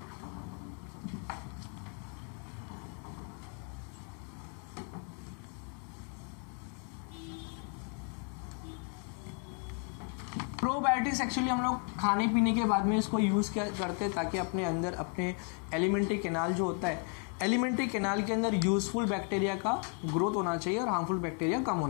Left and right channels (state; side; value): quieter; right; 39.6 dB